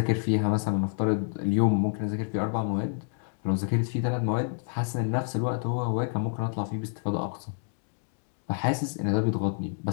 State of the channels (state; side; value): silent; right; 58 dB below the other